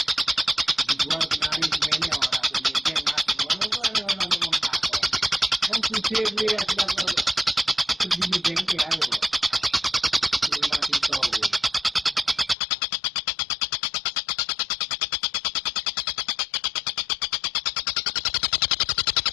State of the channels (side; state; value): right; drops out; at 12.6 s